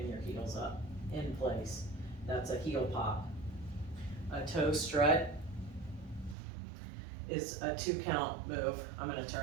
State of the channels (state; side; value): drops out; left; at 6.4 s